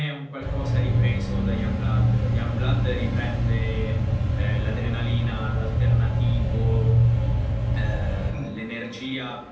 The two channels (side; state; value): both; identical; correlation 1.00